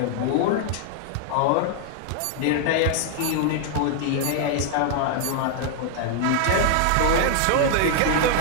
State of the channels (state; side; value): different; both; correlation 0.00